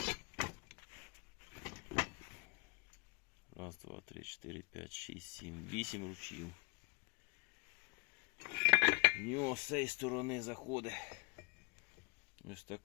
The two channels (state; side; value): quieter; right; 31.4 dB